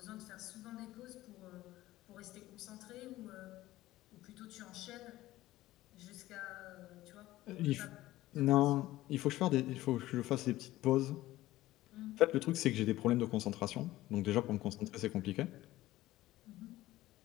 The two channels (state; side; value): quieter; right; 16.3 dB